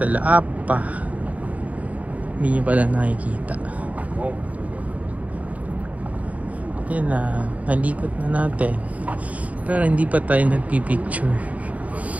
apa? Hindi nyo pala nakikita. Yan na, nalikot na natin. Pero hindi pa tayo nagpipicture.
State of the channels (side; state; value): left; late; 0.070 ms